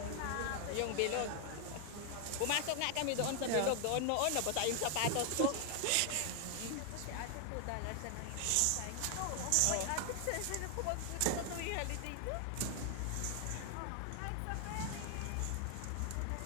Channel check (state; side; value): different; both; correlation 0.00